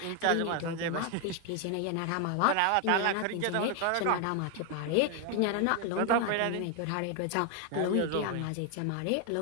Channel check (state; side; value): different; both; correlation 0.01